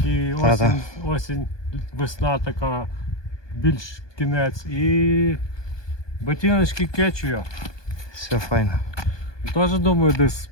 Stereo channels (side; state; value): right; late; 1.2 ms